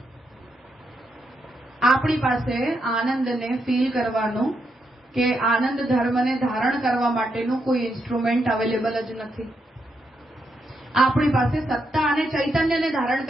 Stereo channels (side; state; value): both; normal; correlation 0.81